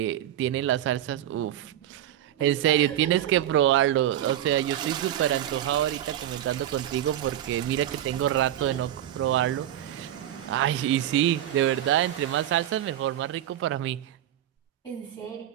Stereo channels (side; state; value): left; quieter; 11.8 dB